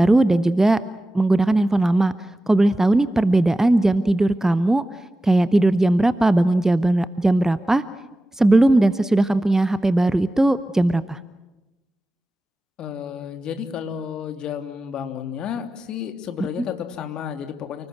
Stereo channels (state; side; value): normal; both; correlation 0.94